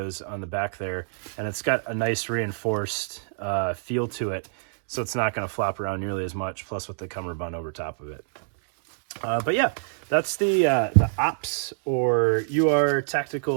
on the back there, and it's got a nice reinforced feel to it, so it's not going to flop around nearly as much, plus with the cummerbund over top of it. But yeah, that's the OPS or UR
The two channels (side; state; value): left; silent; digital silence